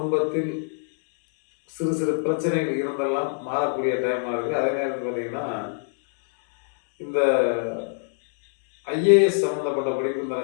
சிறு சிறு பிரச்சனைகள் இருந்தெல்லாம் மாறக்கூடிய டைமாக இருக்குது. அதே நேரத்தில் பார்த்தீங்கன்னா இந்த ஐஏஎஸ் சம்மந்தப்பட்ட படிப்பு இந்த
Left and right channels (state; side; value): silent; right; 63 dB below the other